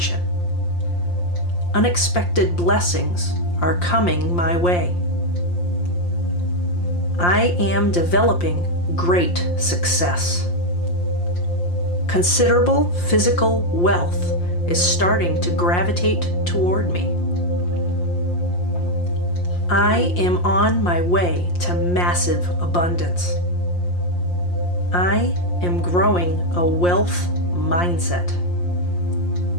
Unexpected blessings are coming my way. I am developing great success. Considerable physical wealth is starting to gravitate toward me. I am on my way to massive abundance. I am growing a wealth mindset.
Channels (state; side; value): late; right; 5.7 ms